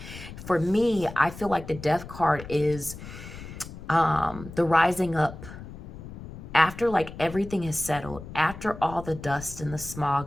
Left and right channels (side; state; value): left; noise; rumble, 13 dB below the sound